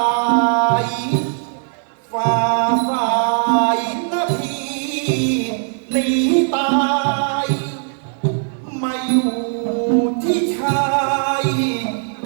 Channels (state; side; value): silent; left; 58 dB below the other